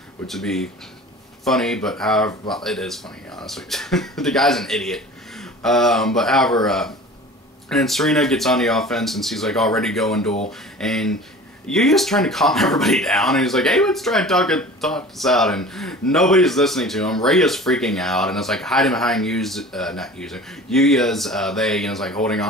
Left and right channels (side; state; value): both; normal; correlation 0.41